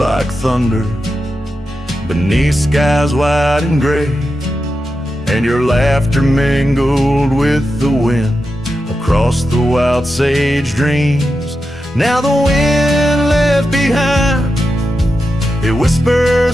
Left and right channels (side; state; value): both; normal; correlation 0.89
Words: thunder beneath skies white and gray, and your laughter mingled with the wind across the wild sage dreams. Now the wind left behind, it